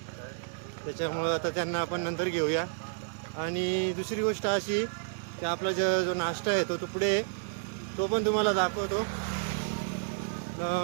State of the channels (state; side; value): silent; left; 57 dB below the other